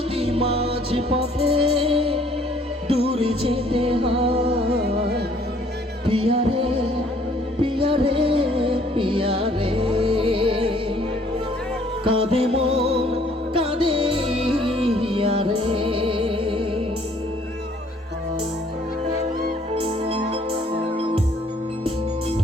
মাঝ পথে দূরে যেতে হয়। পিয়ারে পিয়ারে পিয়ারে, কাঁদে মন কাঁদে হিয়ারে।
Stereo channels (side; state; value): both; normal; correlation 0.60